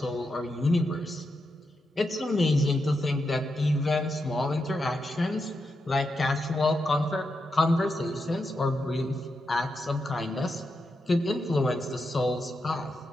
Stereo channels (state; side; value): normal; both; correlation 0.86